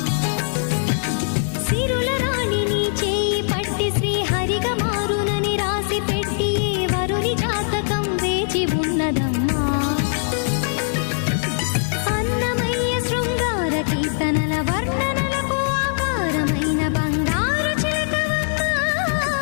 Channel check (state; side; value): silent; right; digital silence